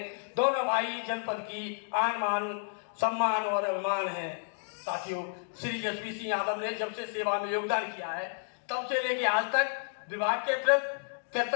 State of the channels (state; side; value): silent; right; digital silence